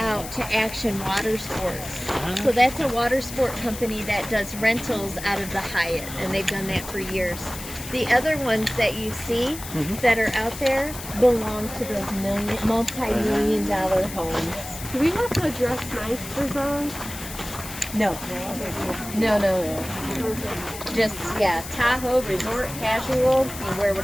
to Action Water Sports. So that's a water sport company that does rentals out of the Hyatt, and they've done that for years. The other ones that you see that are out there belong to those multi-million dollar homes. Do we have to dress nice for those? No. No. Just, yeah, Tahoe, resort, casual. You wear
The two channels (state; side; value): noise; left; hiss, 11 dB below the sound